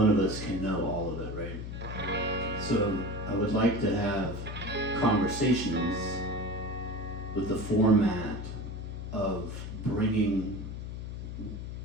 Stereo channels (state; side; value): noise; left; hum, 7 dB below the sound